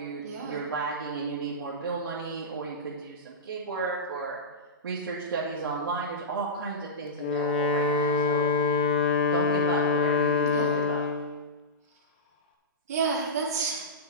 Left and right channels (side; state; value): both; normal; correlation -0.16